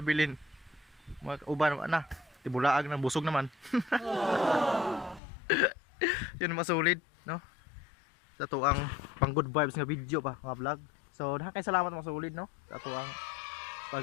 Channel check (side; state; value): right; drops out; at 5.2 s